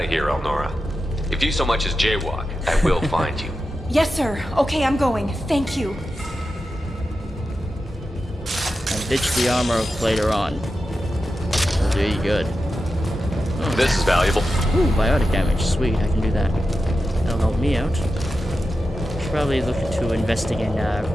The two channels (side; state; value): both; normal; correlation 0.91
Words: here, Elnora. If you so much as jaywalk, I will find you. Yes, sir. Okay, I'm going. Thank you. And ditch the armor later on. That'll do you good. Oh. This is valuable. Ooh, biotic damage. Sweet, I can do that. That'll help me out. Should probably look into investing in